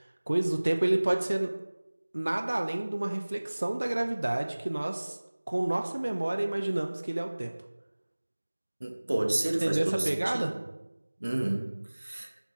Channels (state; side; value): inverted; both; correlation -1.00